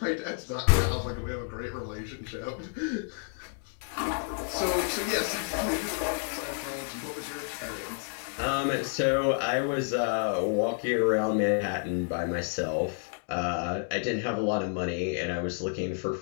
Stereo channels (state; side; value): silent; right; 58 dB below the other